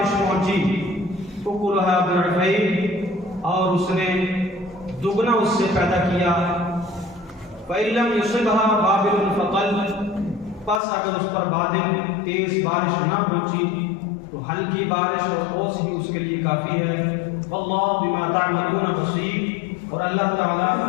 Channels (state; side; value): drops out; right; at 10.8 s